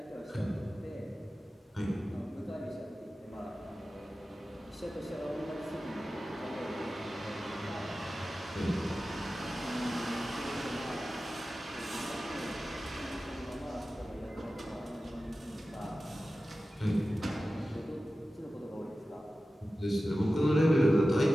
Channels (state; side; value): normal; both; correlation 0.95